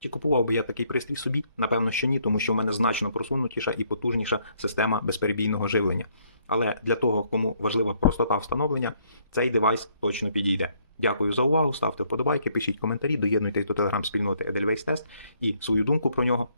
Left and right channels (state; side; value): inverted; both; correlation -0.68